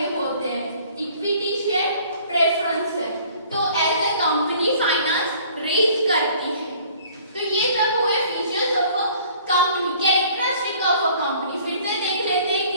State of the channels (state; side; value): inverted; both; correlation -0.53